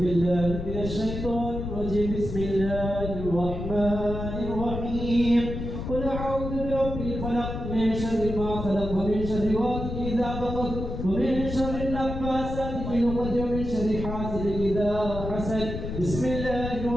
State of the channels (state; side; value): noise; left; rumble, 6 dB below the sound